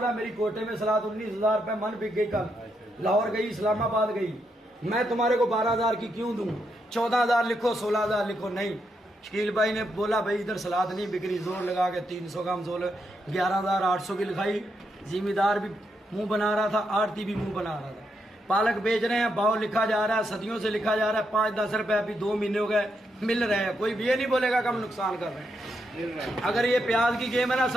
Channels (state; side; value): normal; both; correlation 0.81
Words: है मेरी कोटे में सलाद 19,000 रुपये मन बिक गई। कल लाहौर गई, इस्लामाबाद गई, मैं तुम्हारे को 12,000 की क्यों दूं? 14,000 लिखो, 16,000 लिखो। नहीं, शकील भाई ने बोला भाई इधर सलाद नहीं बिक रही, जोर लगा के 300 का हम 11,800 की लिखाई। जिम्मेदार भी मुंह बना रहा था, आड़ती भी मुंह बना रहा था। पालक बेच रहे हैं, भाव लिखा जा रहा है, सदियों से लिखा जा रहा है। 5-10 रुपए अभी 2 महीने हो गए मिल रहे हैं। कोई भी ये नहीं बोलेगा कि हम नुकसान कर रहे हैं। अगर ये प्याज की गेम है ना